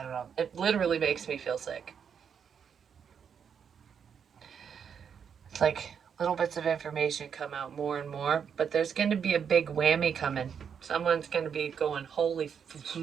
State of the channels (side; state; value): left; quieter; 7.3 dB